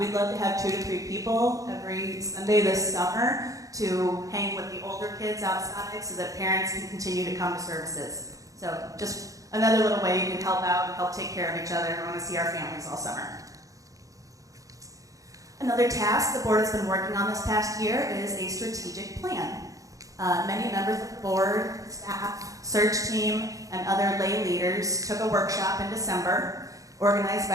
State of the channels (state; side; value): late; left; 0.16 ms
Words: love to have 2 to 3 people every Sunday this summer to hang with the older kids outside so that parents can continue to come to services. So just another little way you can help out and help take care of each other. We want to see our families all summer. Another task the board has been working on this past year is a strategic plan. Many members of the board, staff, search team, and other lay leaders took a workshop in December organized